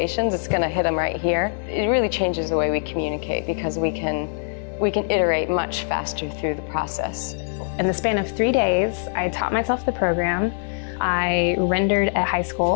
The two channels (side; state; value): right; silent; digital silence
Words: it's going to hit them right here. It really changes the way we communicate because we can iterate much faster through the process. In the span of 3 days, I taught myself the program, I rendered at high